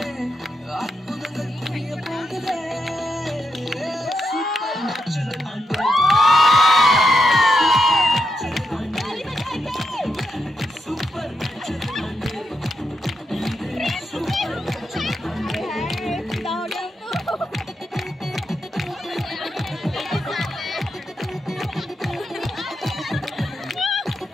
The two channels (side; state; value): both; normal; correlation 0.84